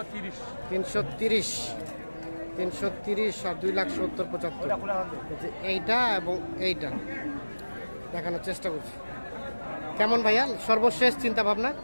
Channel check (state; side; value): inverted; both; correlation -1.00